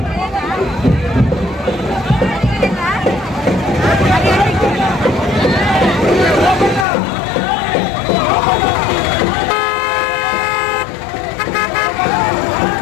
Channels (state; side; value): drops out; right; at 6.9 s